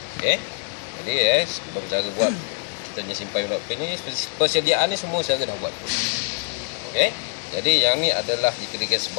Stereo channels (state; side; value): silent; right; digital silence